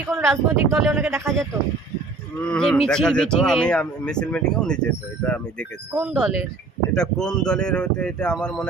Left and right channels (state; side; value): quieter; left; 3.7 dB